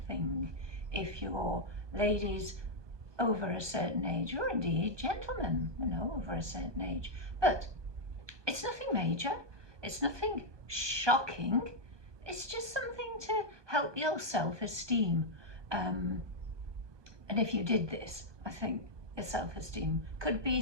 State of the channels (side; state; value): left; late; 1.2 ms